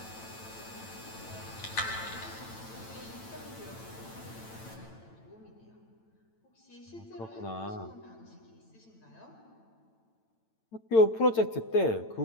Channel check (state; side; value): late; right; 9.0 ms